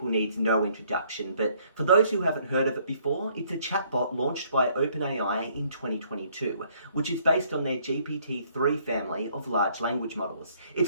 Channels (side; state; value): both; inverted; correlation -0.65